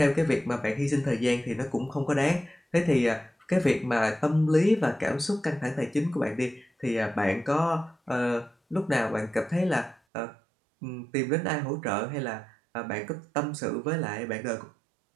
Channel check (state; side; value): drops out; left; at 10.0 s